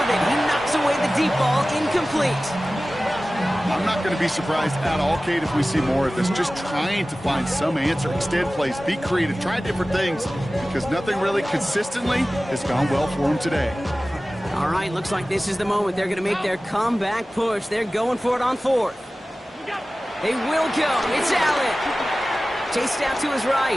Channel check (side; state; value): both; normal; correlation 0.97